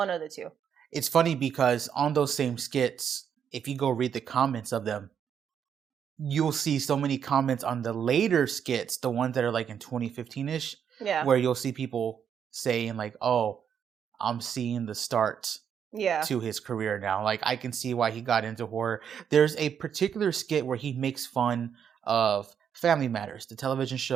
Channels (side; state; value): left; quieter; 8.1 dB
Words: of the two. It's funny because on those same skits, if you go read the comments of them, you'll see so many comments on the later skits, the ones that are like in 2015-ish, where you'll see people saying like, oh, I'm seeing the start to his career now. Like, I can see why he got into horror. There's a particular skit where he makes fun of Family Matters, the television